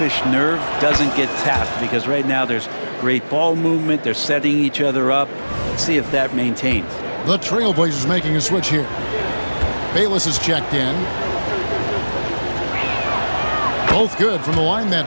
nerve doesn't get tapped, because right now there's great ball movement. They're setting each other up. Let's see if that maintains. The Trailblazers making a switch here. Bayless is checked in. Both good from the line that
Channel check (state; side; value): inverted; both; correlation -1.00